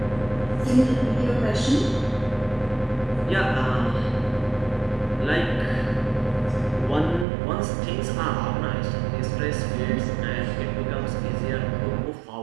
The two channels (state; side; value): drops out; left; at 7.2 s